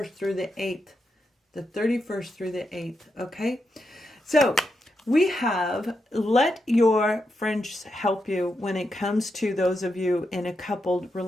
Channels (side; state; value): both; normal; correlation 0.85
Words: through the 8th. The 31st through the 8th, okay? So we have let your friends help you when it comes to those of you in a coupled